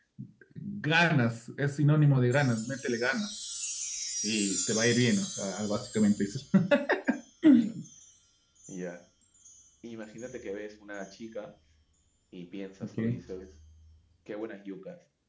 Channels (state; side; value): identical; both; correlation 1.00